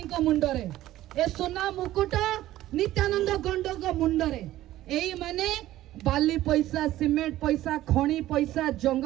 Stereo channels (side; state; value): left; quieter; 14.7 dB